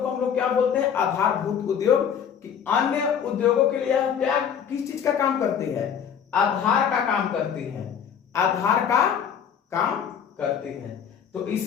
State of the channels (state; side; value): quieter; right; 8.0 dB